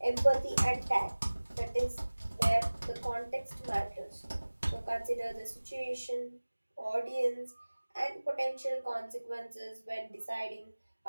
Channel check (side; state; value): both; inverted; correlation -1.00